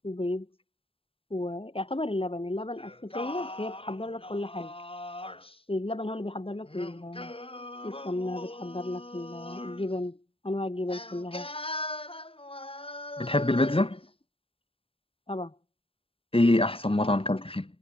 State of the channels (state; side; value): late; right; 0.27 ms